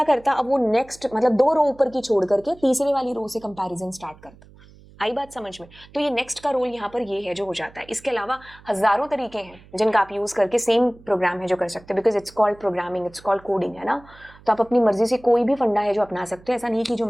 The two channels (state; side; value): noise; right; hum, 24 dB below the sound